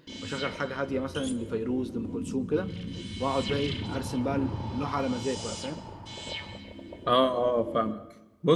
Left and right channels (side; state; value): both; identical; correlation 1.00